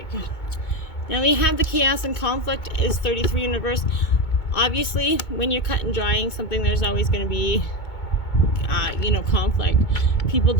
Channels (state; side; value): late; right; 2.2 ms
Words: Now we have the chaos and conflict is 33 in reverse. Obviously, when you're cut and drying something, there's always going to be, you know, conflict. People